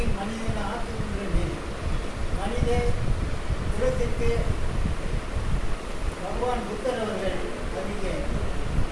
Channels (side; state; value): both; identical; correlation 1.00